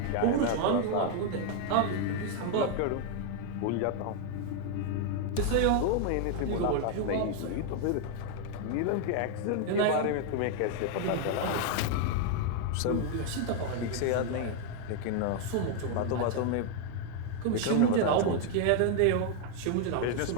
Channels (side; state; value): both; different; correlation 0.00